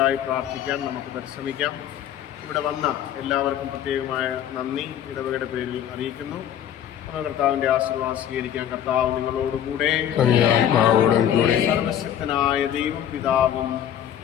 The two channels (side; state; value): right; quieter; 10.1 dB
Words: പ്രാർത്ഥിക്കാൻ നമുക്ക് പരിശ്രമിക്കാം. ഇവിടെ വന്ന എല്ലാവർക്കും പ്രത്യേകമായ നന്ദി ഇടവകയുടെ പേരിൽ അറിയിക്കുന്നു. കർത്താവിന്റെ ആശീർവാദം സ്വീകരിക്കാൻ. കർത്താവ് നിങ്ങളോടുകൂടെ, സർവശക്തനായ ദൈവം പിതാവും